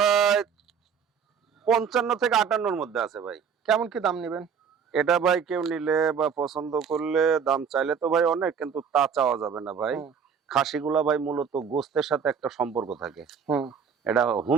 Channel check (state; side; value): quieter; left; 6.8 dB